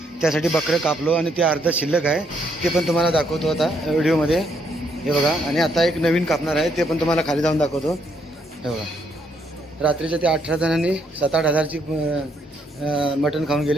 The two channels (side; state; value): both; normal; correlation 0.73